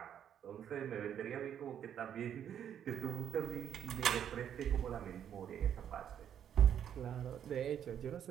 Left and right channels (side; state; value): left; quieter; 9.3 dB